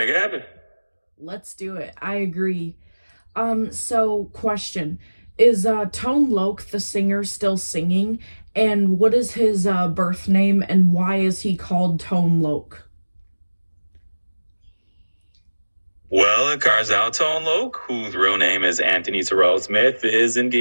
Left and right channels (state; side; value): inverted; both; correlation -1.00